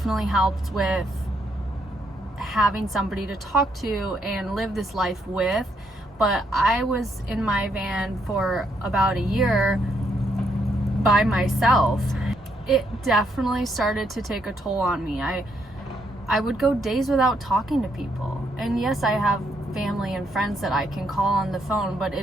helped with having somebody to talk to and live this life with. But I was in my van for about a year by myself. It definitely started to take a toll on me. I would go days without talking to people. And yes, I have family and friends that I can call on the phone, but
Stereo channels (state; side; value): normal; both; correlation 0.75